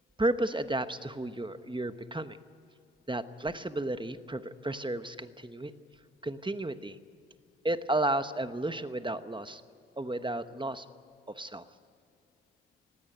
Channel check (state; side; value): normal; both; correlation 0.58